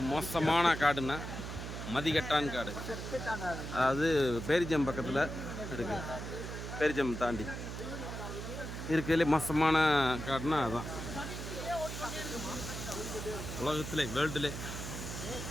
மோசமான காடுன்னா மதிகட்டான் காடு. அதாவது பேரிஜம் பக்கத்தில் இருக்குது. பேரிஜம் தாண்டி இருக்கிறதுலே மோசமான காடுனா அதுதான். உலகத்திலே வேர்ல்டிலே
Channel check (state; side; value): noise; right; hum, 7 dB below the sound